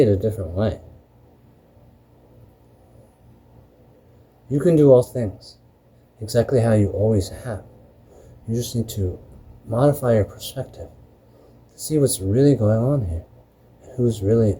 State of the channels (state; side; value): identical; both; correlation 1.00